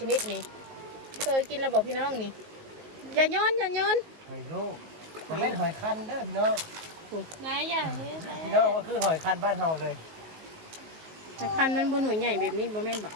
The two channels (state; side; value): late; left; 19 ms